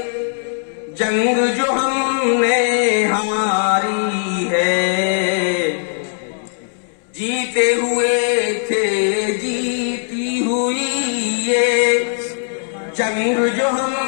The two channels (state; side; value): silent; right; 65 dB below the other